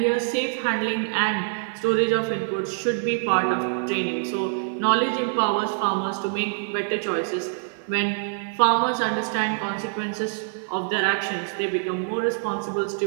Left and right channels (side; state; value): left; silent; 62 dB below the other